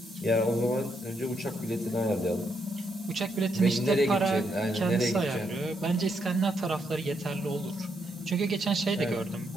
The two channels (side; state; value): both; normal; correlation 0.78